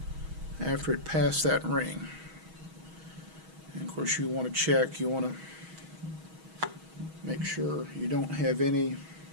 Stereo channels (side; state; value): left; late; 6.3 ms